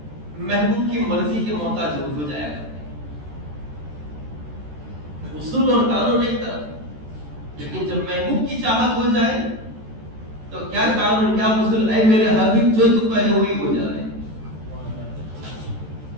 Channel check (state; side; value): late; left; 14 ms